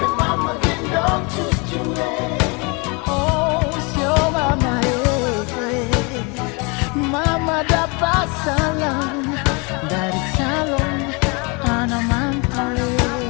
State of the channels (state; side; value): quieter; right; 30.4 dB